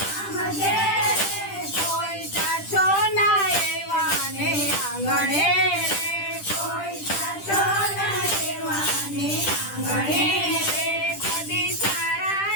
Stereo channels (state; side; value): late; right; 10 ms